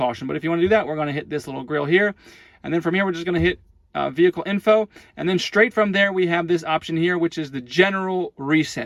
But if you want to do that, we're going to hit this little grill here, and then from here we're just going to hit vehicle info, and then straight from there we have this option here, which is the general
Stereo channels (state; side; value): identical; both; correlation 1.00